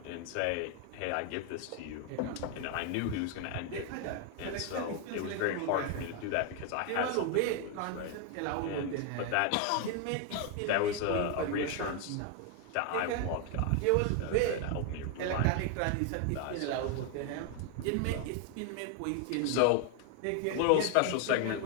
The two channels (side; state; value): both; different; correlation 0.01